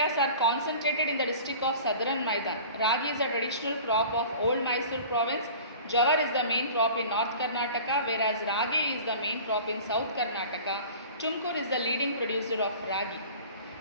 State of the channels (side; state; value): both; inverted; correlation -0.42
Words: are concentrated in the district of Southern Maidan. Ragi is a traditional crop of old Mysore province. Jawar is the main crop in North Karnataka, whereas ragi is the main crop in South Karnataka. Tumkur is the leading producer of ragi.